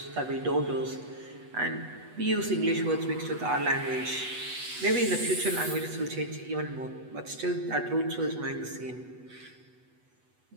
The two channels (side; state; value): left; late; 8.1 ms